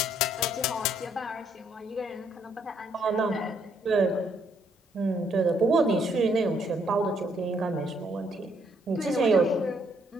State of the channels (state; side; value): normal; both; correlation 0.70